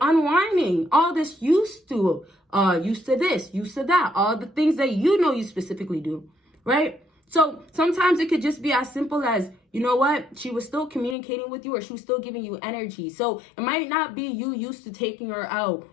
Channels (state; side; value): drops out; right; at 11.2 s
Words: all this used to this, used to that, all the things that you know you specifically do, right? So sometimes it could just be as simple as, you know what, she was still communicating with you or she was still giving you energy. So it might not be you used to taking her out